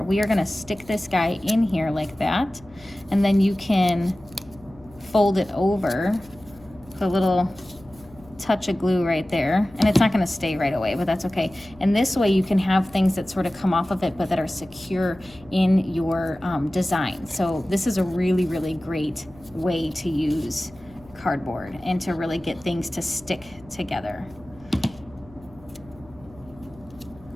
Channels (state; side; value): noise; left; hum, 24 dB below the sound